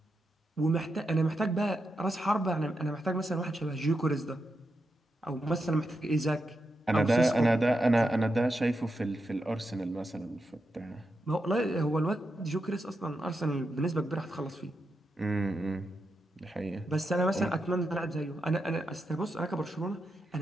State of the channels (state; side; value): normal; both; correlation 0.86